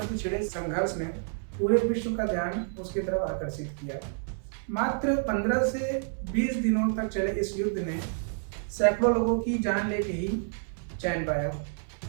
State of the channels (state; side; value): silent; left; 59 dB below the other